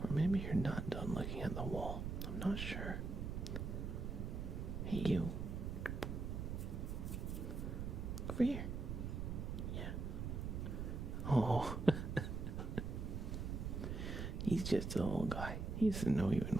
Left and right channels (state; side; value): noise; right; rumble, 3 dB below the sound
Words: Or maybe you're not done looking at the wall. I'm not sure. Hey you. Over here. Yeah, Oh. He's just a little guy. He doesn't know even